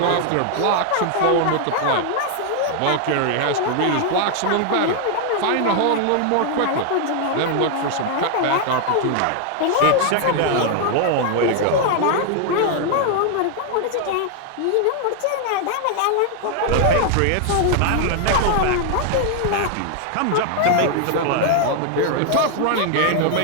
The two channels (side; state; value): both; different; correlation 0.00